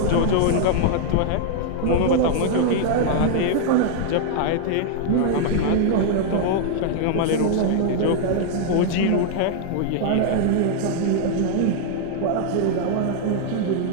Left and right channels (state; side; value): different; both; correlation -0.01